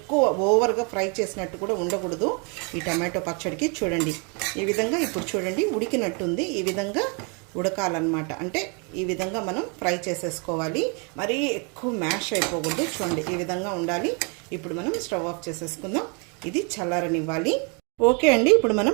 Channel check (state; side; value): quieter; left; 34.4 dB